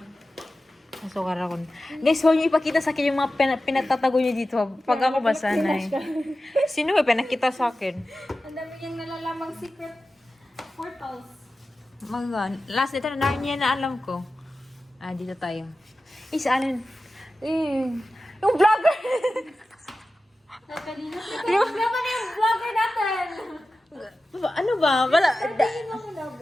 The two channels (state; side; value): normal; both; correlation 0.94